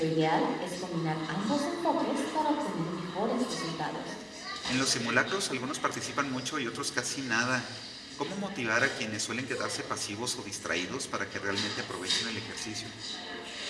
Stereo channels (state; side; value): identical; both; correlation 1.00